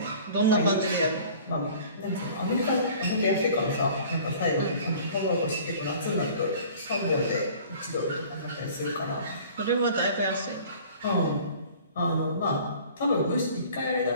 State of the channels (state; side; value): inverted; both; correlation -0.47